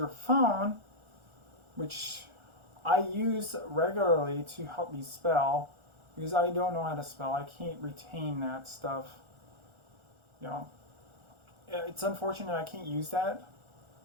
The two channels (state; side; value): late; left; 1.4 ms